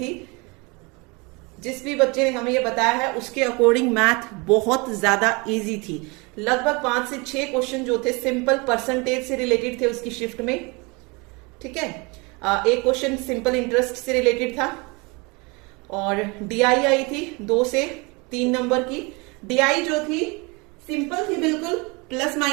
जिस भी बच्चे ने हमें ये बताया है उसके अकॉर्डिंग मैथ बहुत ज्यादा इजी थी। लगभग 5 से 6 क्वेश्चन जो थे सिंपल परसेंटेज से रिलेटेड थे उसकी शिफ्ट में। ठीक है, एक क्वेश्चन सिंपल इंटरेस्ट से रिलेटेड था और डीआई आई थी 2 से 3 नंबर की। डीआई जो थी सिंपल थी बिल्कुल, प्लस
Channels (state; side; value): quieter; left; 28.0 dB